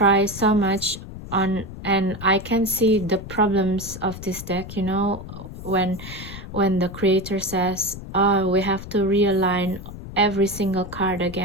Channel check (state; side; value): noise; left; rumble, 12 dB below the sound